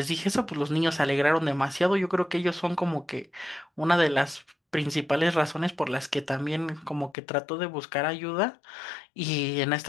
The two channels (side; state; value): right; drops out; at 7.2 s